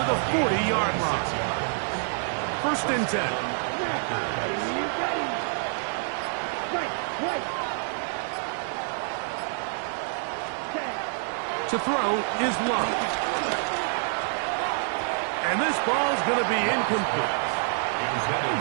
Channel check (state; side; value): silent; left; digital silence